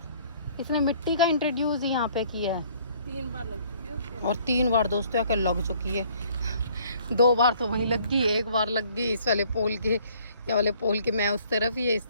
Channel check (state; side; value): inverted; both; correlation -0.59